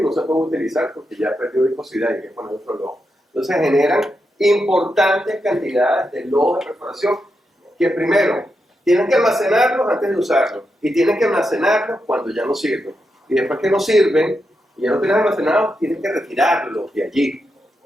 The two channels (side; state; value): both; normal; correlation 0.85